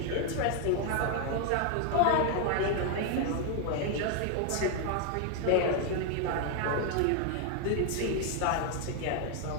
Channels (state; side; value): different; both; correlation 0.00